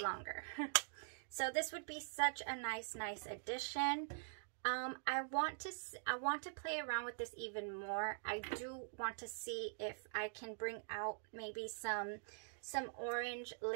longer. So this would be such a nice addition. I want to play around with this even more. I do want to see if I can bring out maybe some orange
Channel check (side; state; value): left; silent; digital silence